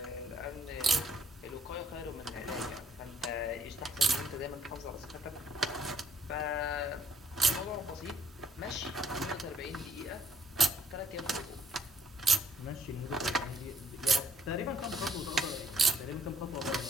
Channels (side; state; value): both; normal; correlation 0.66